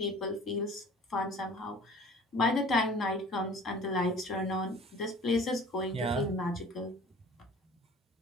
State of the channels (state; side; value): normal; both; correlation 0.46